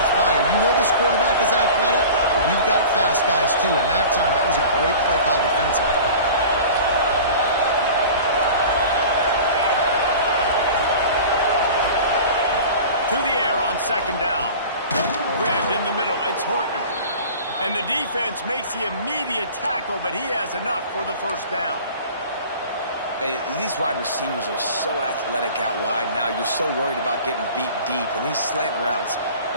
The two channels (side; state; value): both; inverted; correlation -0.40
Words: fire. You know this quarterback is athletic, but we've got fast guys too, and that time, that was a great play call defensively. To the air on second down. Grabbed in the middle. It's Horton. And the defense makes the immediate tackle, but he has enough for the first down. Hey, these wide receivers are so athletic out wide now. You're so worried about getting beat deep. And these slant routes,